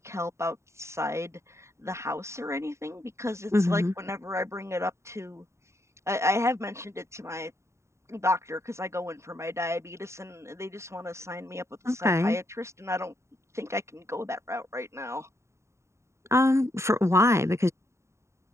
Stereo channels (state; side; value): late; left; 0.14 ms